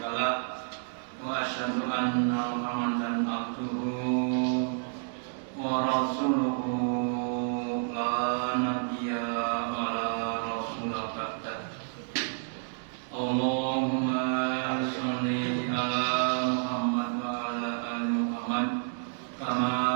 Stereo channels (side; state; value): left; silent; digital silence